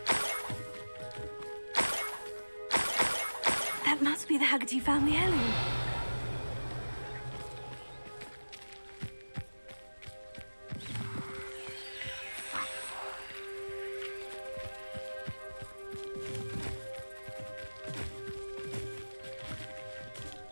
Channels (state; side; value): inverted; both; correlation -1.00